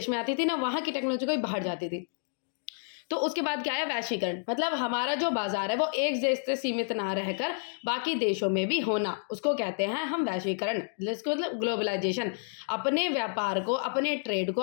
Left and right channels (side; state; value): right; silent; digital silence